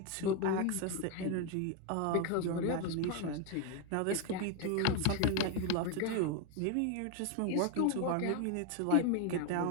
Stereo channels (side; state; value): both; different; correlation 0.01